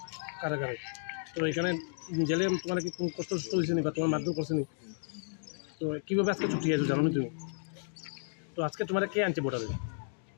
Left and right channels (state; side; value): silent; right; digital silence